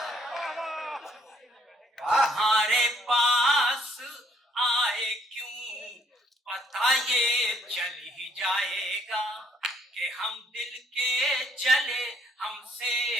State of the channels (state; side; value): normal; both; correlation 0.66